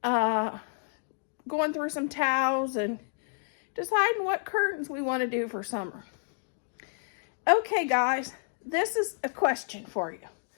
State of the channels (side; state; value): right; silent; digital silence